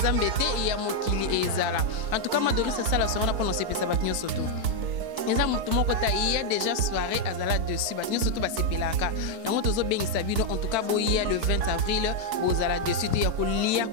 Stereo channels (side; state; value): left; late; 4.5 ms